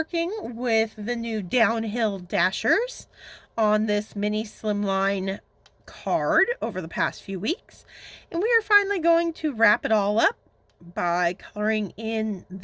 with the new Downhill Dashers on this mini Slimline card over the past few weeks, and we are finally going to wrap it all up by coloring in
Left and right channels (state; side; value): identical; both; correlation 1.00